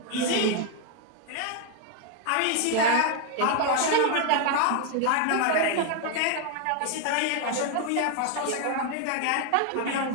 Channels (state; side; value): different; both; correlation 0.01